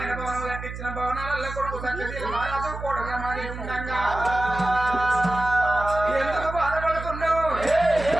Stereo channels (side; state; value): right; noise; hum, 9 dB below the sound